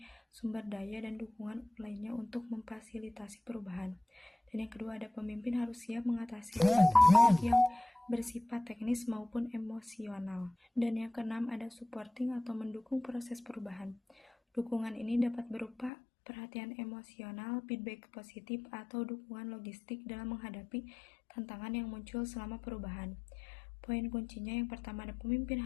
sumber daya, dan dukungan lainnya untuk memfasilitasi perubahan. Dan yang kedua ada pemimpin harus siap mengatasi hambatan yang bersifat teknis maupun emosional. Dan yang keenam ada supporting atau mendukung proses perubahan. Dukungan ini dapat berupa perhatian emosional, feedback positif, atau dukungan logistik dalam menghadapi tantangan yang muncul selama perubahan. Poin kuncinya yang pertama ada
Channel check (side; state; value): right; drops out; at 15.9 s